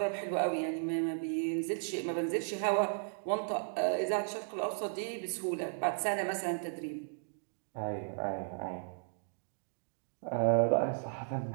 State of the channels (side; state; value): left; silent; digital silence